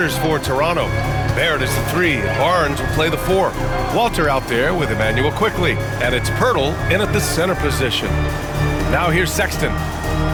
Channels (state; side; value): identical; both; correlation 1.00